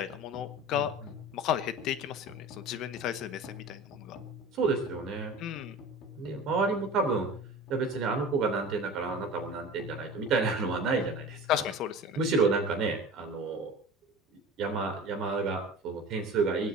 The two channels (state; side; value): normal; both; correlation 0.36